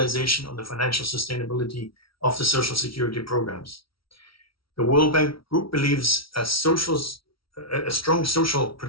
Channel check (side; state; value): right; late; 0.75 ms